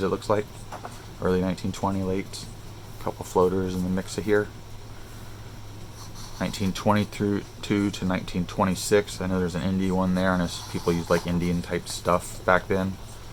it looks like, early 1920, late. Couple floaters in the mix of here. 1922 to 1926. I know there's an indie one there, and people used like Indian type stuff back then.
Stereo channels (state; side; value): identical; both; correlation 1.00